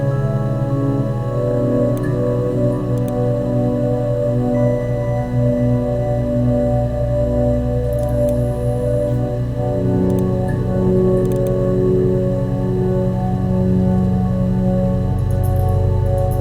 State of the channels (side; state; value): both; identical; correlation 1.00